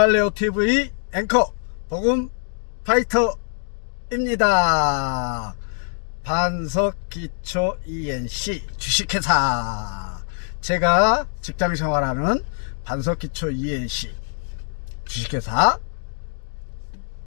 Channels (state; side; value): silent; right; digital silence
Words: TV 앵커 복음 파이터입니다. 반석기초 ENC 주식회사, 제가 직장생활하는 반석기초 ENC 주식회사